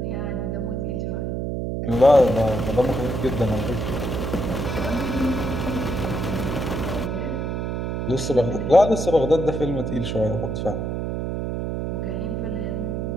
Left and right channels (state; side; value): noise; right; hum, 2 dB below the sound